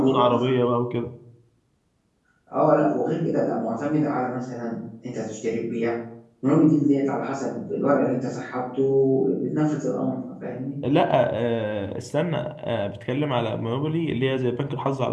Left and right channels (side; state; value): both; identical; correlation 1.00